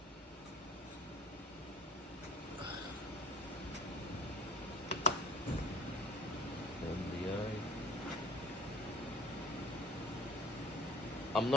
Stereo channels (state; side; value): normal; both; correlation 0.45